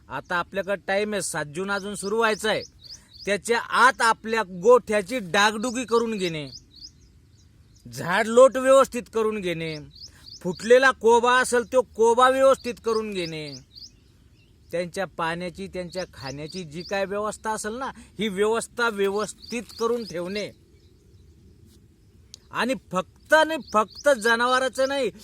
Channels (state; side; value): identical; both; correlation 1.00